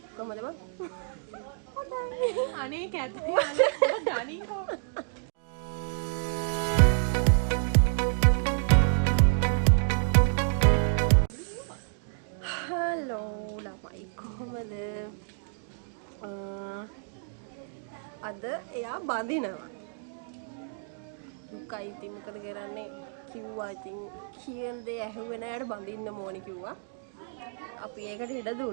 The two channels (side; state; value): left; silent; digital silence